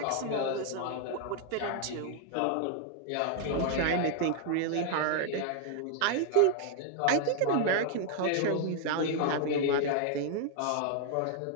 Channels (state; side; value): different; both; correlation 0.00